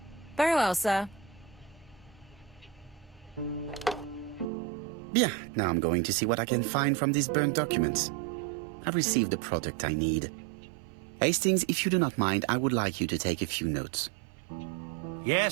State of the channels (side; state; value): left; drops out; at 4.5 s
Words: Very well, sir. Bien, now I'm going to see what I can find from these burned documents. I've received the product I need. Hastings, if you do not mind, I would like you to take a few notes.